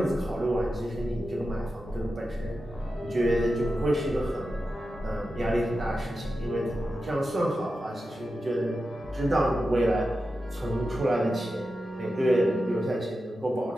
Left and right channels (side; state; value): both; normal; correlation 0.91